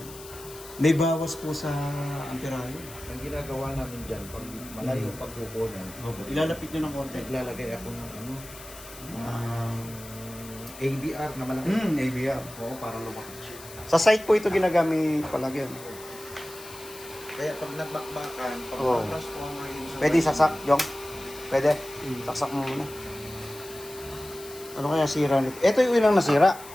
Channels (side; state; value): left; noise; hiss, 16 dB below the sound